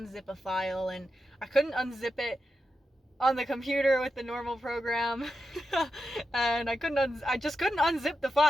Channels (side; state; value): both; normal; correlation 0.87